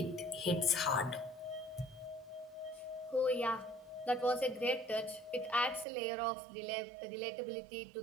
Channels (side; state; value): left; drops out; at 5.9 s